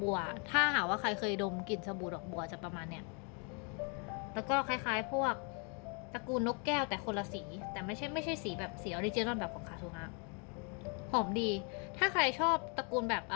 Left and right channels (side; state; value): right; quieter; 36.4 dB